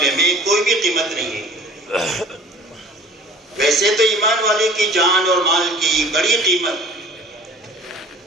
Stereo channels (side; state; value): both; normal; correlation 0.47